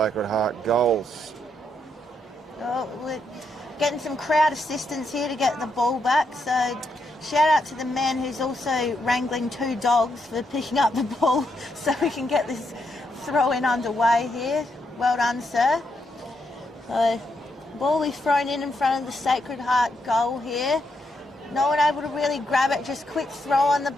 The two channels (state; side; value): normal; both; correlation 0.79